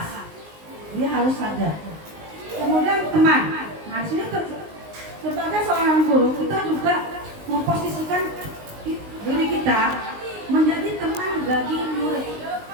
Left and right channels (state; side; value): late; left; 19 ms